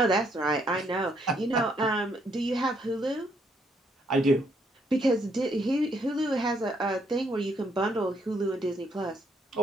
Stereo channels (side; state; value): both; normal; correlation 0.72